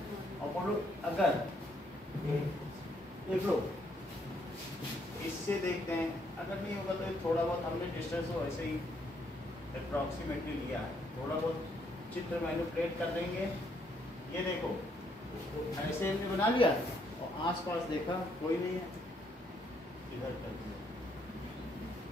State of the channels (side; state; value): both; normal; correlation 0.71